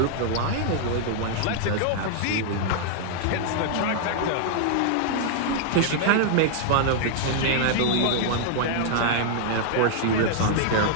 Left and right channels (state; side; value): different; both; correlation -0.01